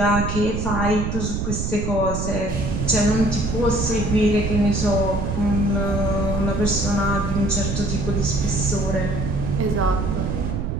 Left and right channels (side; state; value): right; noise; rumble, 2 dB below the sound